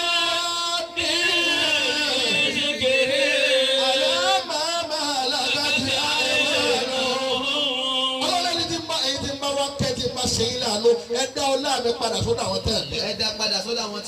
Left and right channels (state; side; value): identical; both; correlation 1.00